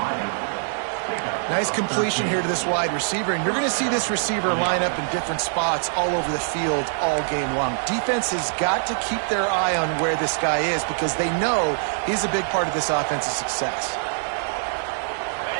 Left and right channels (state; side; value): silent; left; digital silence